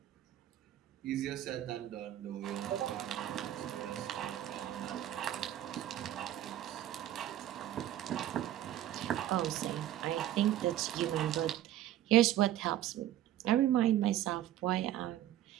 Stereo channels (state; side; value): quieter; left; 12.6 dB